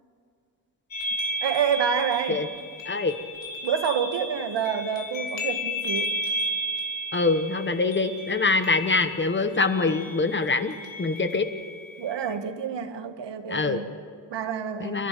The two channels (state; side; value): normal; both; correlation 0.05